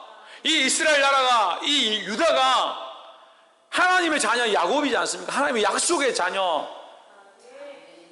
이 이스라엘 나라가, 이 유다가 하나님의 자녀 야곱이지 않습니까? 하나님의 약속의 자녀.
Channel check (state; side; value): identical; both; correlation 1.00